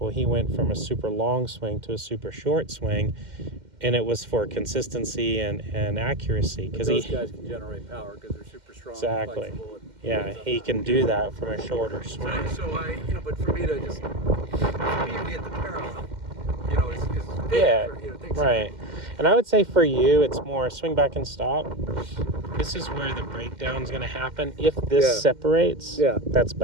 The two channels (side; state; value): left; late; 2.1 ms